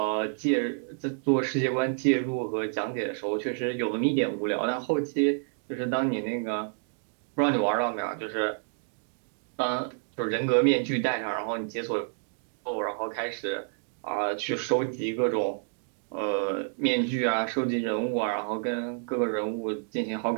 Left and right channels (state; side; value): silent; left; digital silence